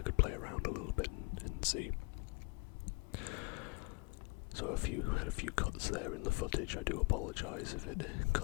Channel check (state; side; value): quieter; right; 27.2 dB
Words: play around a little bit and see. So had a few cuts there in the footage. I do apologise if it